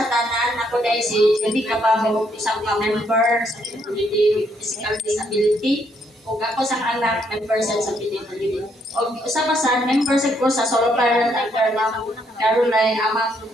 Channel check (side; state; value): both; normal; correlation 0.72